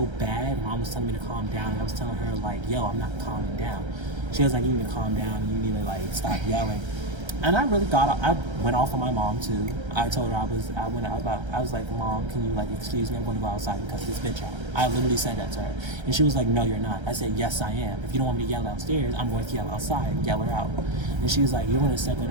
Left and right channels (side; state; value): left; late; 1.3 ms